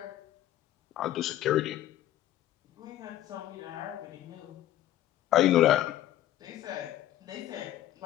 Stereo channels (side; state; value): right; quieter; 13.2 dB